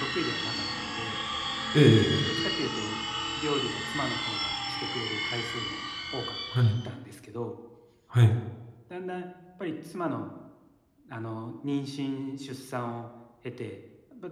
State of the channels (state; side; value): identical; both; correlation 1.00